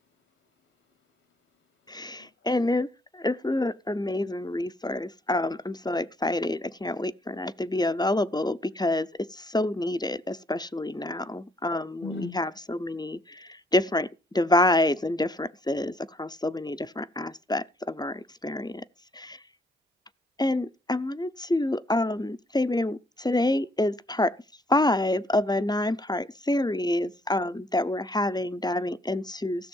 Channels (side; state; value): both; normal; correlation 0.67